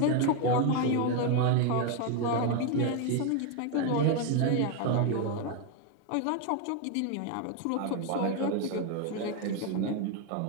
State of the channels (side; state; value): both; different; correlation 0.01